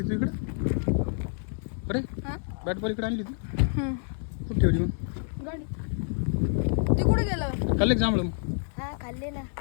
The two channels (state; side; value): silent; right; digital silence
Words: तू इकडे अरे बॅट बॉल इकडे आणली होती कुठे ठेवली मग गाडी ते कुठे गेलं खाल्ले का जांभळं मग हा खाल्ले ना.